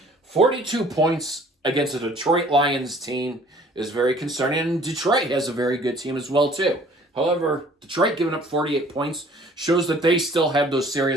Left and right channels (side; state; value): both; normal; correlation 0.54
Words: 42 points against a Detroit Lions team is very concerning, and Detroit has a very good team as well, too. However, Detroit giving up 48 points shows that they still have those